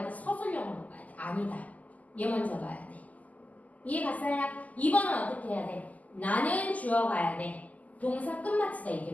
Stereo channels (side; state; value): right; late; 0.076 ms